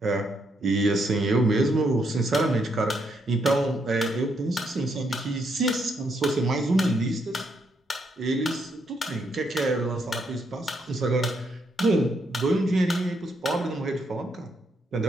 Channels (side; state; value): both; normal; correlation 0.76